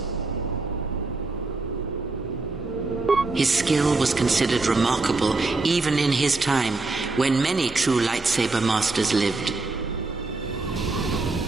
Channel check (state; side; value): quieter; left; 3.5 dB